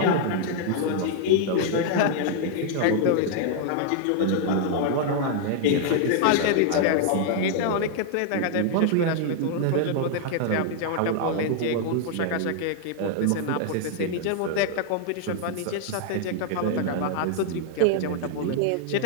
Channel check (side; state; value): both; different; correlation 0.00